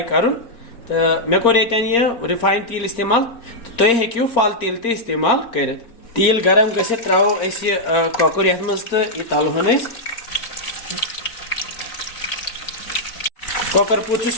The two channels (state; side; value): late; right; 4.3 ms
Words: कर तो मे कोर ये रिफाइन तेल इस्तेमाल तुम हेक्यू फल तेल ते इस्तेमाल कर तेल गरम गसित त्रो कॉकर ये मज तो यह तलहन कॉकर पूत